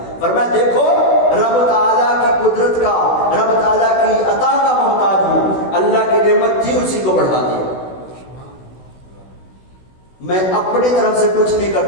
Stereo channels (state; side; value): late; right; 16 ms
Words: فرمایا دیکھو رب تعالیٰ کی قدرت کا، رب تعالیٰ کی عطا کا محتاج ہوں، اللہ کی نعمت تھی اسی کو بڑھا دیا، میں اپنی طرف سے کچھ نہیں